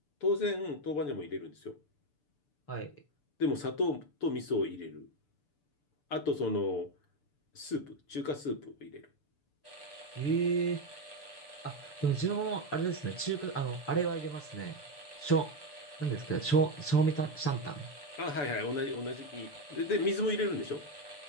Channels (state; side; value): late; right; 6.8 ms